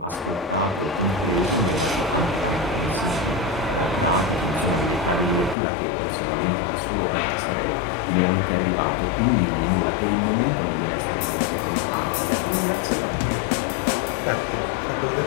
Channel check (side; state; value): right; drops out; at 5.6 s